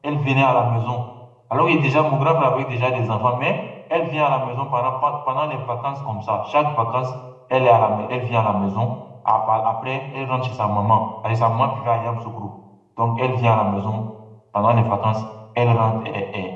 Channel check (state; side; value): identical; both; correlation 1.00